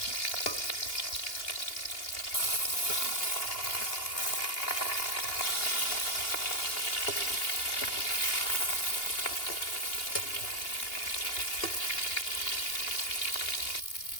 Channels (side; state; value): right; late; 2.8 ms